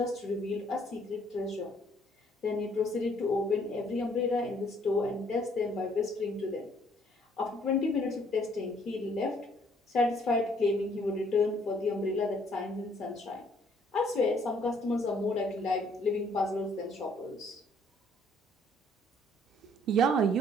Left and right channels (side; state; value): both; normal; correlation 0.63